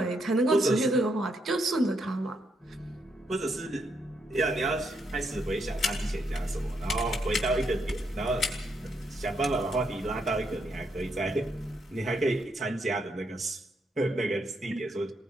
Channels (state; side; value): normal; both; correlation 0.78